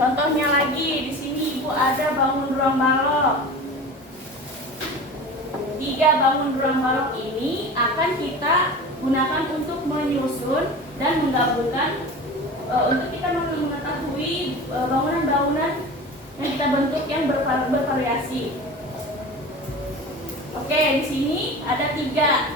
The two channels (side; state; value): both; normal; correlation 0.34